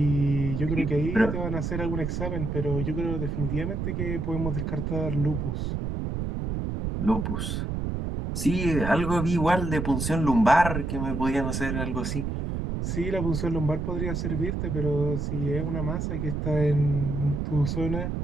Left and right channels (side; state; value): right; noise; rumble, 2 dB below the sound